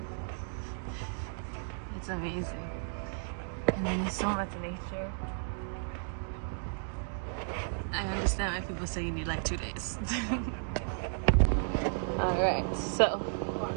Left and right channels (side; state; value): left; silent; digital silence